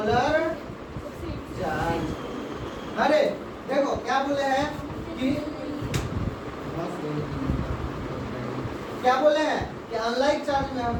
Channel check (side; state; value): both; identical; correlation 1.00